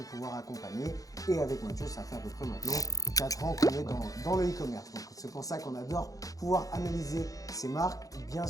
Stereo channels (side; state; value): right; late; 0.17 ms